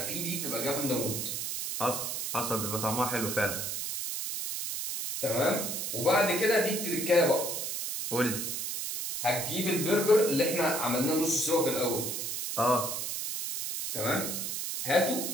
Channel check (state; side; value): noise; right; hiss, 3 dB below the sound